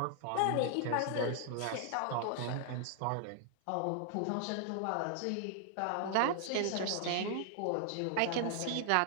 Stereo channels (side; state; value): both; different; correlation 0.00